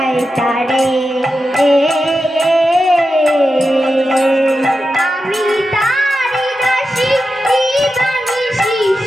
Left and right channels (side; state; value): both; normal; correlation 0.90